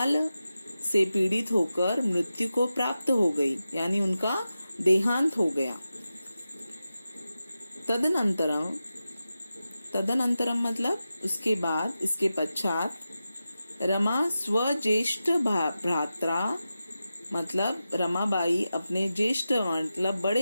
से पीड़ित होकर मृत्यु को प्राप्त हो गई, यानी उनका देहांत हो गया. तदनंतरम मतलब उसके बाद, इसके पश्चात रमा स्वज्येष्ठ भ्रात्रा मतलब रमाबाई अपने ज्येष्ठ मतलब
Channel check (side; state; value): both; inverted; correlation -0.92